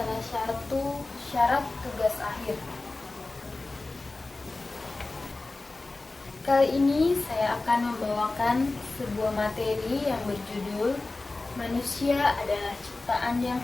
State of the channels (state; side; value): quieter; right; 3.2 dB